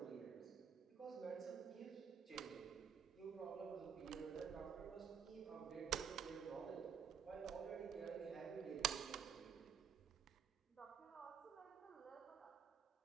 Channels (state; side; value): quieter; left; 7.4 dB